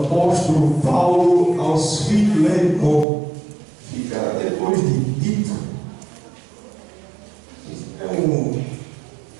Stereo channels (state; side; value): drops out; left; at 3.1 s